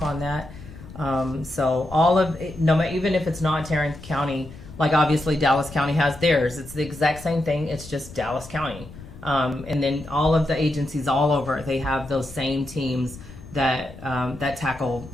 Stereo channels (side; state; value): left; noise; rumble, 16 dB below the sound